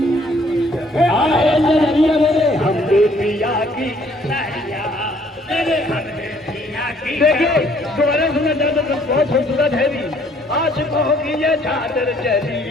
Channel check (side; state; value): both; normal; correlation 0.62